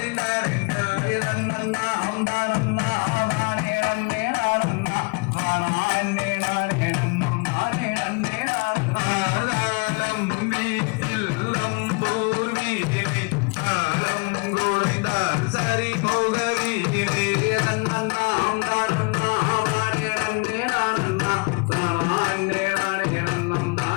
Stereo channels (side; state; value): right; quieter; 30.6 dB